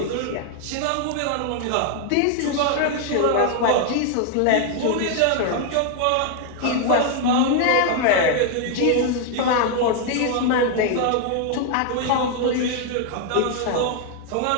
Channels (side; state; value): both; different; correlation 0.00